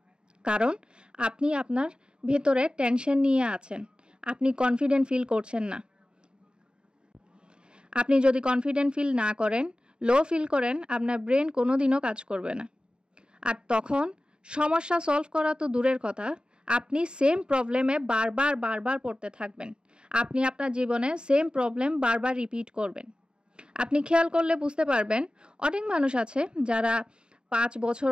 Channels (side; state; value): left; late; 0.050 ms